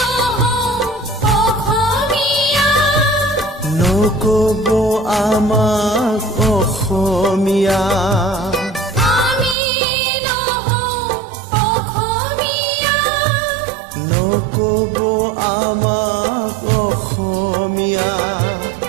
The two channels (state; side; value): drops out; left; at 9.6 s